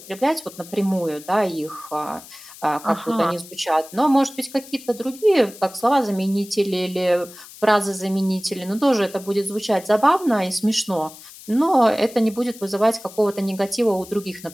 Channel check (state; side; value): noise; left; hiss, 18 dB below the sound